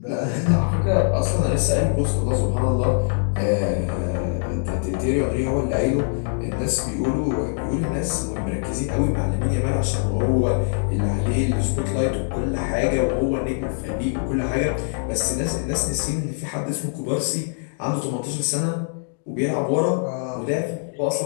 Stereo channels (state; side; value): silent; right; digital silence